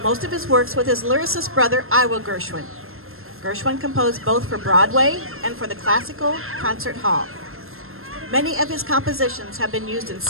most of his works with his lyricist brother, Ira Gershwin. Gershwin composed both for Broadway and for the Classical Concert Hall. Many of his compositions have been used in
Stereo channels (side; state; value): left; late; 0.61 ms